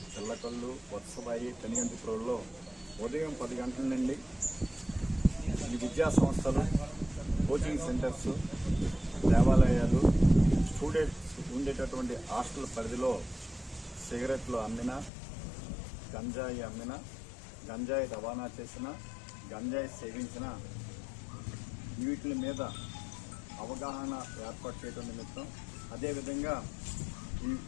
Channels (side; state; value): right; drops out; at 15.1 s